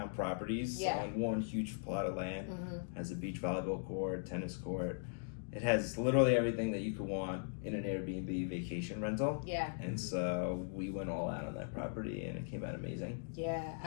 properties on one huge plot of land. Has a beach volleyball court, tennis court. It has literally everything that you could want in an Airbnb vacation rental. Yeah. And so we went all out on that property, and it came out amazing. Yeah.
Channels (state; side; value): silent; right; digital silence